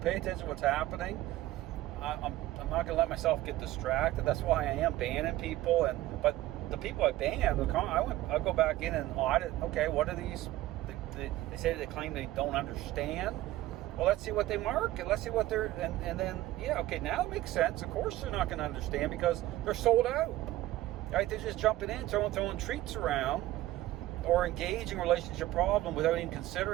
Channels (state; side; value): quieter; left; 15.9 dB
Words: attention to what's happening. I'm not going to let myself get distracted. That's why I am banning people. But the people I banned, I'll go back in and audit. Okay, what are these? They say they claim they don't understand. Well, let's see what they market. Let's see what they're, and then, now it makes sense. Of course they're not going to understand because they're sold out. Right? They're just jumping in, throwing treats around, or engaging a relationship problem without even